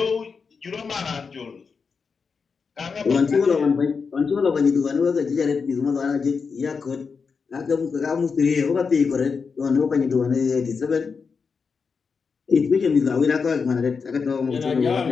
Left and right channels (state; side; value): quieter; right; 5.3 dB